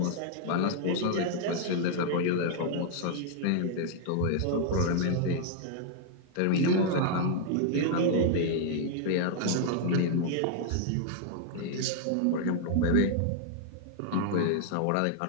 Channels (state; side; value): different; both; correlation -0.01